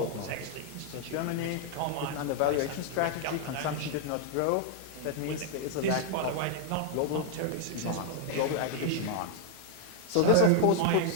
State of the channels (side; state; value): both; different; correlation 0.00